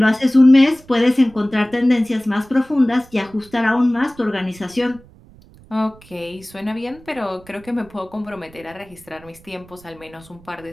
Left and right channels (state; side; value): noise; right; rumble, 24 dB below the sound